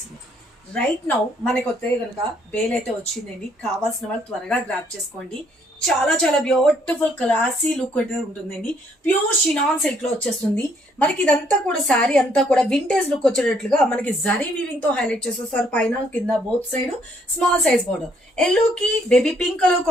రైట్ నౌ మనకి వస్తే కనుక బేల్ అయితే వచ్చిందండి. కావాల్సిన వాళ్ళు త్వరగా గ్రాప్ చేసుకోండి. చాలా చాలా బ్యూటిఫుల్ క్లాసీ లుక్ అయితే ఉంటుందండి. ప్యూర్ షినాన్ సిల్క్ లో వచ్చేస్తుంది. మనకి ఇదంతా కూడా శారీ అంతా కూడా వింటేజ్ లుక్ వచ్చేటట్లుగా మనకి జరీ వీవింగ్ తో హైలైట్ చేసేస్తారు. పైన కింద both side small size border, yellow కి బేబీ పింక్ కలర్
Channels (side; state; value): both; normal; correlation 0.68